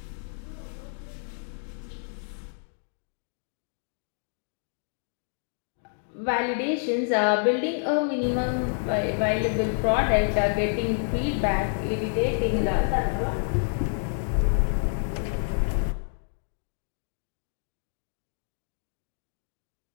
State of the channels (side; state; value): right; silent; digital silence